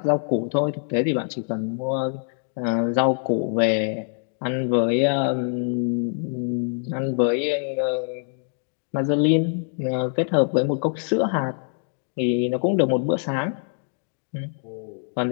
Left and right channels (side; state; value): right; silent; 62 dB below the other